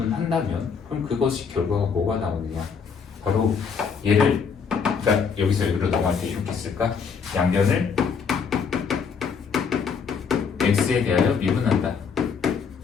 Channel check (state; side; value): quieter; right; 6.1 dB